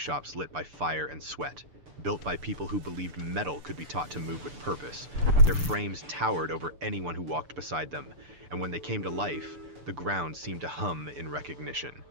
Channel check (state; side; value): late; left; 6.8 ms